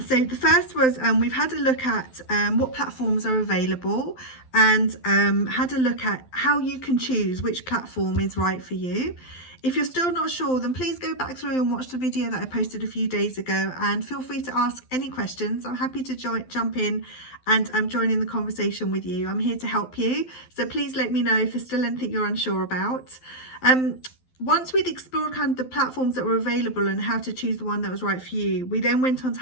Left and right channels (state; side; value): late; right; 12 ms